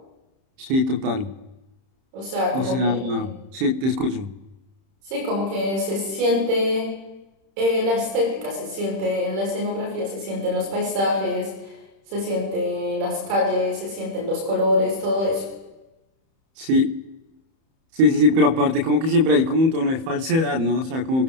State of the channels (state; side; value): late; left; 31 ms